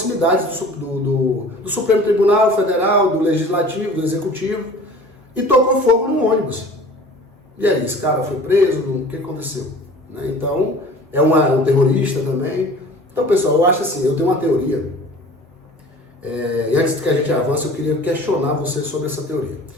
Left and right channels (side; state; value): both; normal; correlation 0.44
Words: do Supremo Tribunal Federal, do Legislativo, do Executivo, e tocou fogo no ônibus. E aí, esse cara foi preso, o que aconteceu? Né? Então, é um terrorista também. Então, pessoal, eu acho assim, eu tenho uma teoria, e antes que a gente avance, eu queria questionar você sobre essa teoria.